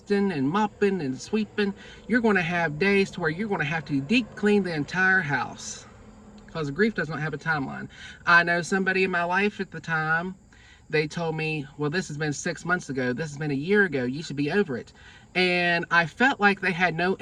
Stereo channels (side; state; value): both; identical; correlation 1.00